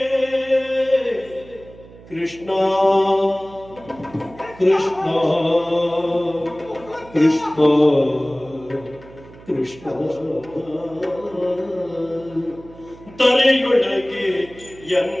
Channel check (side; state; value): right; noise; hum, 21 dB below the sound